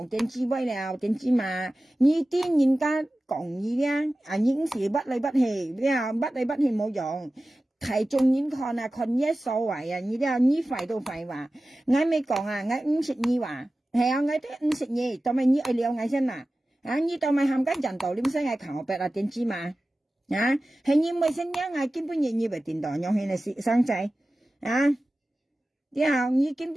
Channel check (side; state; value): both; normal; correlation 0.95